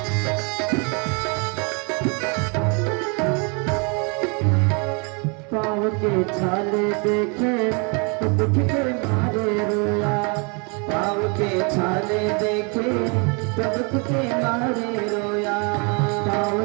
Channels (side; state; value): left; quieter; 34.0 dB